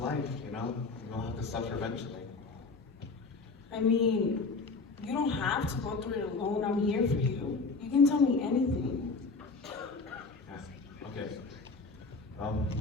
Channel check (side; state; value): right; quieter; 4.1 dB